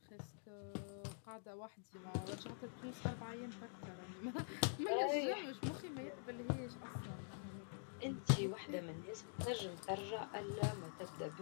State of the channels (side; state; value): right; silent; digital silence